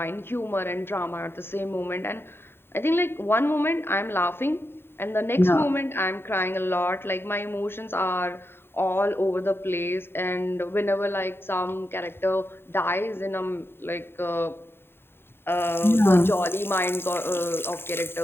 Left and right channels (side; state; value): right; late; 0.11 ms